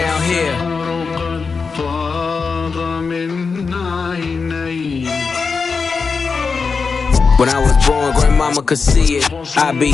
here. When I was born, grandmama could see it. I be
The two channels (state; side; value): quieter; right; 5.0 dB